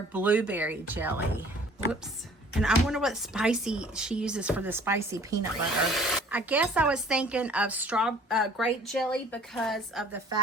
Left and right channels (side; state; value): both; normal; correlation 0.52